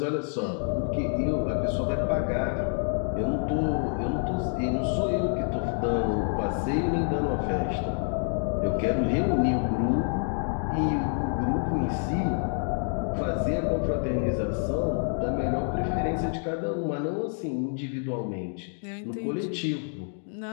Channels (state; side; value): silent; right; 60 dB below the other